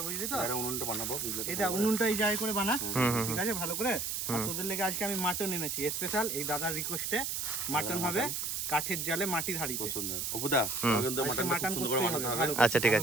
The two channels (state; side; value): noise; right; hiss, 2 dB below the sound